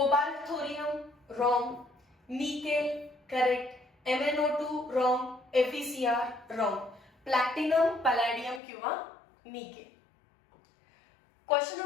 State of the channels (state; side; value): drops out; right; at 8.6 s